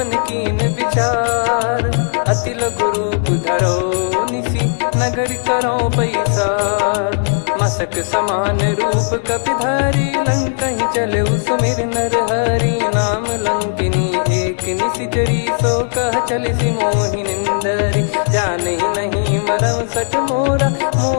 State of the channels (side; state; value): right; silent; digital silence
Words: कीन विचार। अति लघु रूप धरो निसी, नगर करो पैसार। मसक समान रूप कपिधारी, लंकहि चले सुमिर नर हरि। नाम लंकिनी एक निशिचरी, सो कह चलिसि मोहि निंदरी। जानहि नहीं मरम सठ मोरा,